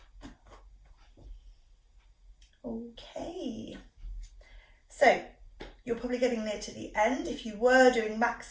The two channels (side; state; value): both; identical; correlation 1.00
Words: Okay, so you're probably getting near to the end. If you were doing